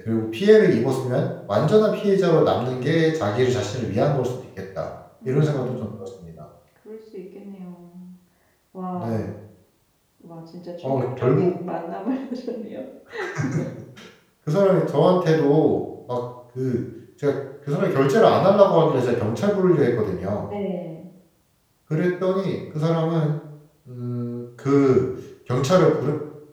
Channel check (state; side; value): identical; both; correlation 1.00